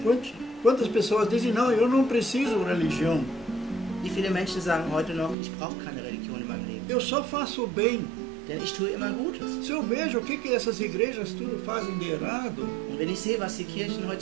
Menschen. Quantas pessoas dizem, não, eu não preciso de religião, Wie viele Menschen sagen heute noch, ich brauche keine Religion in meinem Leben, eu só faço o bem. denn ich tue immer Gutes. Se eu vejo o que essas igrejas tudo fazem de errado, Und wenn ich sehe, was die Kirchen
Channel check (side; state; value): left; drops out; at 5.4 s